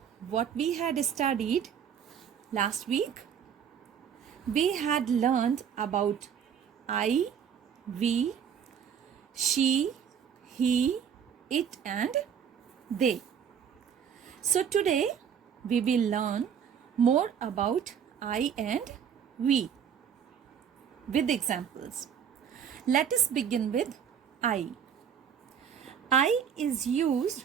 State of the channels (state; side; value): quieter; left; 7.9 dB